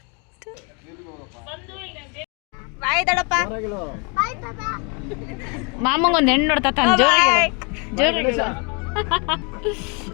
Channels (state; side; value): quieter; right; 33.6 dB